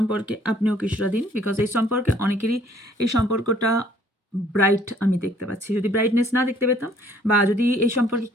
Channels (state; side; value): normal; both; correlation 0.60